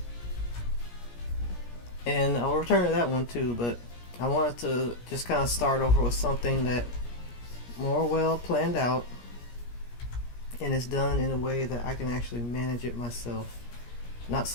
And I'll return to that one too, but I wanted to just kind of start over with something that more well planned out and is done in a way that I can actually manage it myself. Not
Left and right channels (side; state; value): right; late; 17 ms